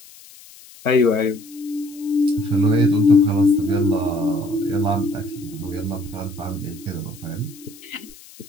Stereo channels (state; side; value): noise; left; hiss, 21 dB below the sound